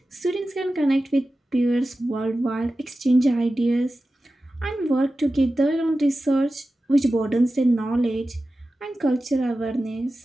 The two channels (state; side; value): normal; both; correlation 0.94